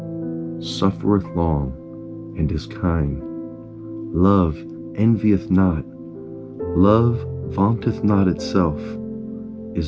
suffereth long, and is kind. Love envieth not. Love vaunteth not itself,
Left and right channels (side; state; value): both; identical; correlation 1.00